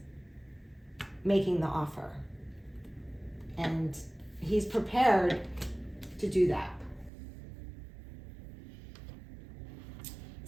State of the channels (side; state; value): left; drops out; at 7.1 s